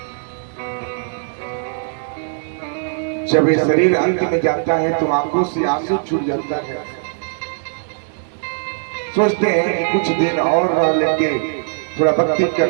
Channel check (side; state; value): left; silent; digital silence